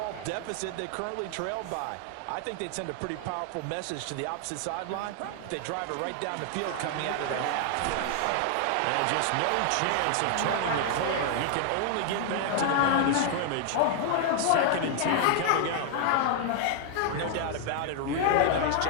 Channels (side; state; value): both; different; correlation 0.00